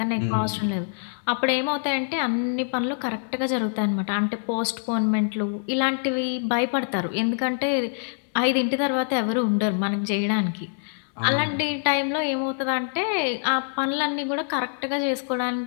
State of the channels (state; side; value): silent; right; digital silence